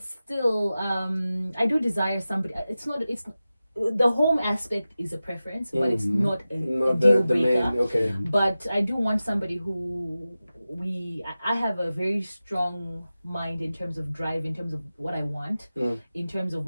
still, I do desire somebody. It's the home aspect is a preference, but it's not a Not deal the breaker. main. Okay. But I do want somebody who I have a very strong mind in terms of drive, in terms of what I want, in terms of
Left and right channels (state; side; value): inverted; both; correlation -0.95